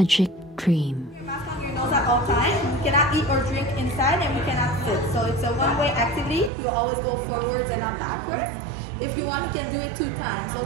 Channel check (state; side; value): drops out; left; at 6.5 s